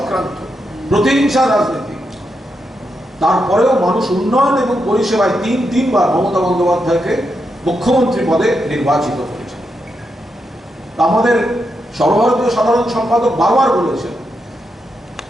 প্রতিহিংসার রাজনীতি, তারপরেও মানুষ উন্নয়ন এবং পরিষেবায় তিনবার মমতা বন্দ্যোপাধ্যায়কে মুখ্যমন্ত্রী পদে নির্বাচিত করেছে। আমাদের সর্বভারতীয় সাধারণ সম্পাদক বারবার বলেছেন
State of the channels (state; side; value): normal; both; correlation 0.84